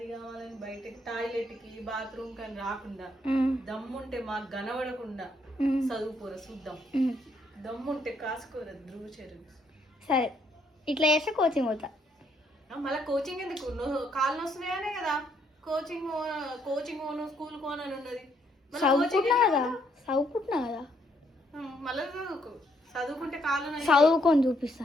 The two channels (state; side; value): normal; both; correlation 0.71